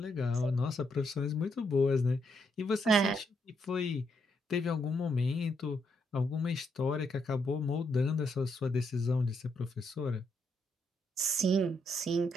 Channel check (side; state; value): both; normal; correlation 0.77